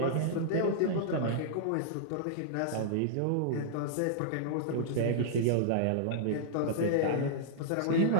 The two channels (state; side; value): different; both; correlation -0.01